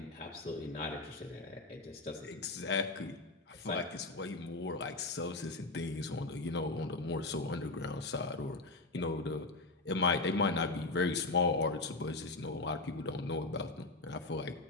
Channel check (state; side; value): quieter; right; 3.2 dB